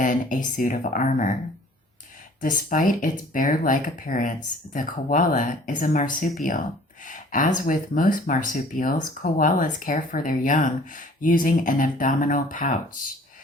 a suit of armor. Despite its bear-like appearance, the koala is a marsupial. As with most marsupials, koalas care for their young using an abdominal pouch,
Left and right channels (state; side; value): normal; both; correlation 0.52